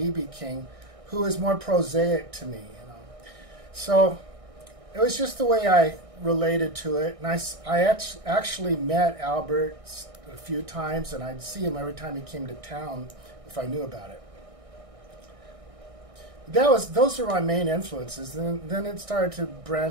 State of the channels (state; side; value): late; left; 1.6 ms